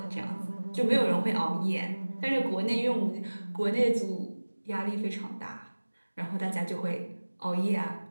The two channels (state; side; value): inverted; both; correlation -1.00